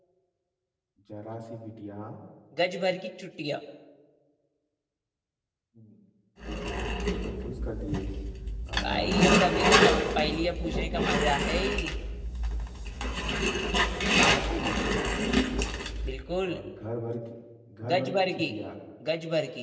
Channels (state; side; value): identical; both; correlation 1.00